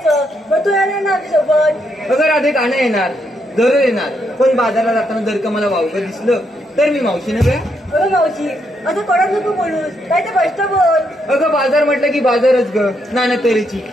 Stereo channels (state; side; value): normal; both; correlation 0.77